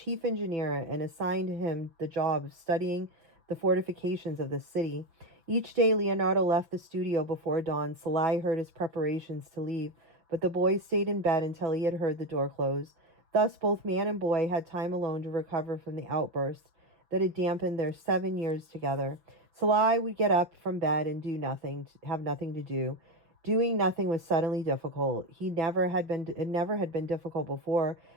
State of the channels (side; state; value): left; late; 6.0 ms